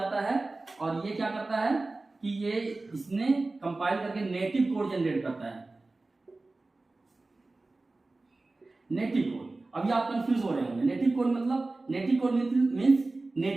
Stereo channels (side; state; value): left; quieter; 3.2 dB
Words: है। और ये क्या करता है कि ये इसने कंपाइल करके नेटिव कोड जनरेट करता है। नेटिव कोड, अभी आप कंफ्यूज हो रहे होंगे, नेटिव कोड मीन्स